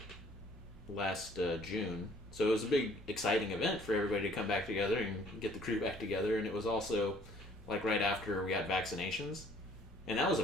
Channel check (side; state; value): both; normal; correlation 0.58